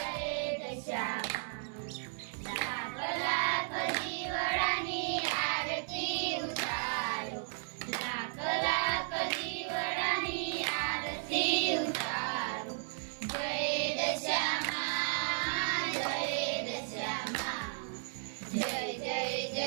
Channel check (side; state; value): left; silent; digital silence